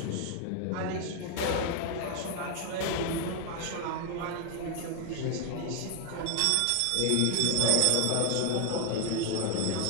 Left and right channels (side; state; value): both; different; correlation 0.00